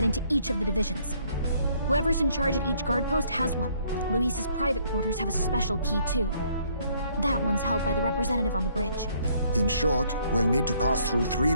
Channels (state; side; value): inverted; both; correlation -0.65